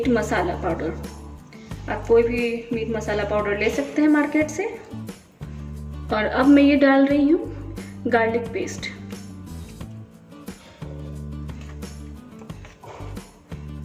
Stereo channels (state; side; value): identical; both; correlation 1.00